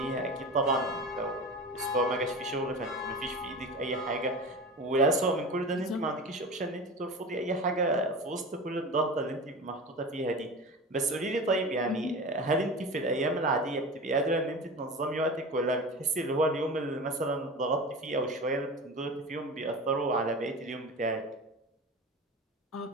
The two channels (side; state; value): both; normal; correlation 0.31